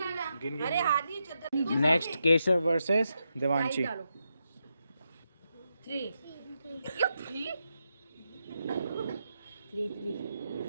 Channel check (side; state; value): both; inverted; correlation -0.85